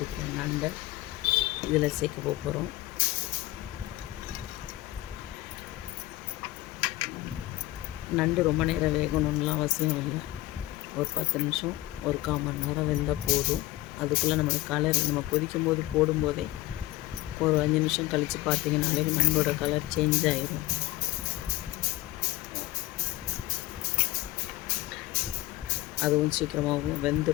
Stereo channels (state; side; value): quieter; right; 17.3 dB